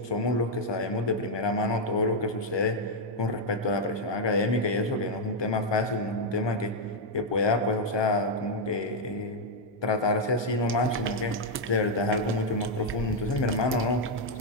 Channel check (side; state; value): both; normal; correlation 0.00